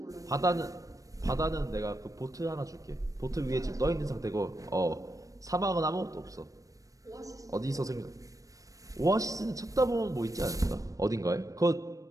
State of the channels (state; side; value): late; left; 0.16 ms